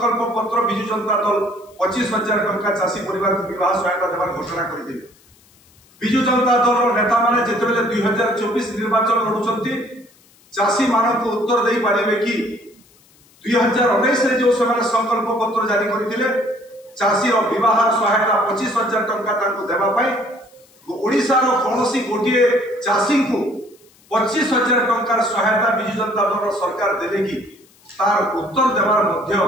पत्र विजु जनता दल 25,000 टंका चाषी परिवार को विवाह सहायता देवार घोषणा करते विजु जनता दल नेता माने जितेबाला 2024 निर्वाचन लड़ुंट चाषी मान को उत्तर दे पारे कि 2019 जो से संकल्प पत्र जारी करते चाषी विवाह सहायता 25,000 टंका देवाई ओडिशार कौन गोटे चाषी को 25,000 टंकार सहायता विजु जनता दल सरकार देवे कि तार उत्तर देवार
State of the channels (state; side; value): noise; left; hiss, 30 dB below the sound